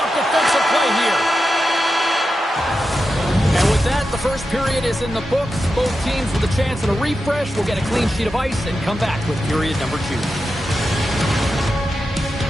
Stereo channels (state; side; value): normal; both; correlation 0.90